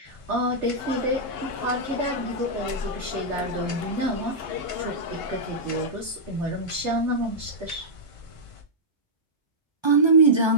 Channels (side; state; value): both; normal; correlation -0.11